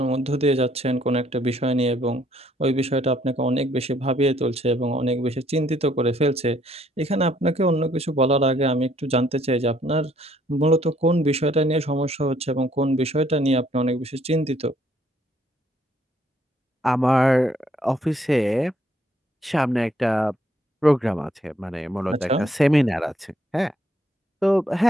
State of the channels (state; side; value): normal; both; correlation 0.67